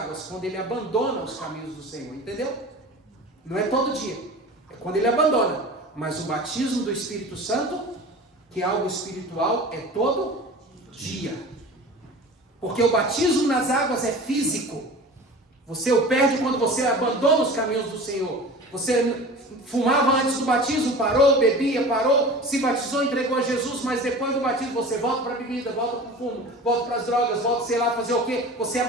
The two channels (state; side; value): normal; both; correlation 0.37